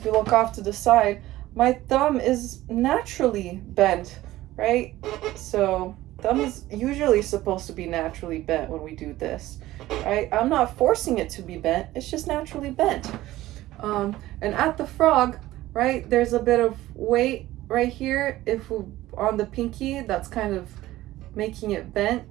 you look off to the side, my thumb is naturally bent, right? So thumb is usually supposed to be naturally bent when we do this, right? I'm not forcing it to be bent. It's just naturally bent. And at the frog, right, there's a bit of weight right here. If we, on the pinky, that's kind of making it bent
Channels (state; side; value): quieter; left; 16.1 dB